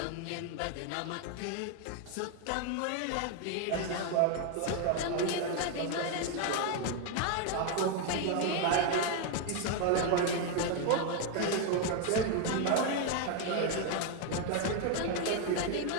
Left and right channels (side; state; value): both; different; correlation 0.01